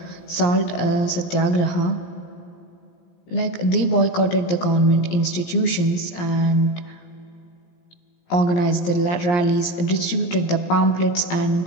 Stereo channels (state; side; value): late; right; 17 ms